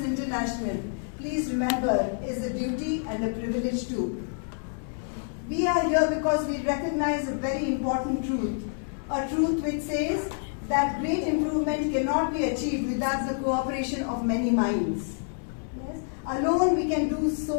International, please remember, is a duty and a privilege too. We are here because we recognize a very important truth, a truth which says that great improvement cannot be achieved without the cooperation of many minds. Yes? Alone we can do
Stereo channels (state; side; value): silent; right; 60 dB below the other